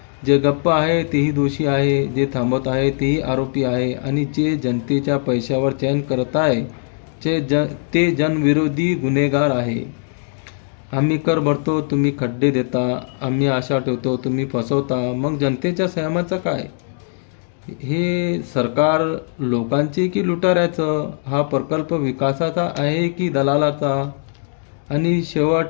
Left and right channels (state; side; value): silent; right; digital silence